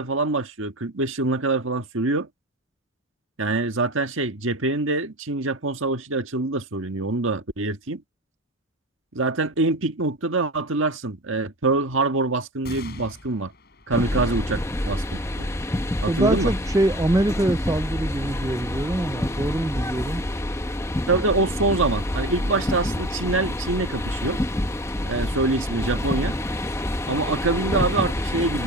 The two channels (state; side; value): normal; both; correlation 0.35